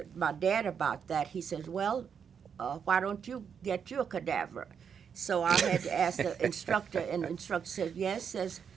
my dad about that. He says, well, why don't you get you a cadaver? So I had to ask the instructor, and the instructor said, yes, says,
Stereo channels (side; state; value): left; quieter; 7.2 dB